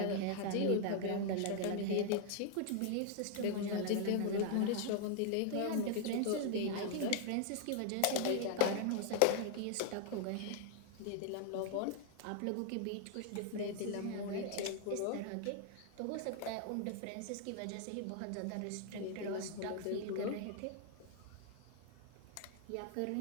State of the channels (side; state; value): both; different; correlation 0.00